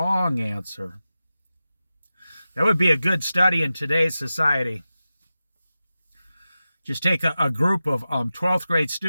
answer. That would be a good study in today's society. Just take a group of 12th grade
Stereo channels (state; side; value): inverted; both; correlation -0.94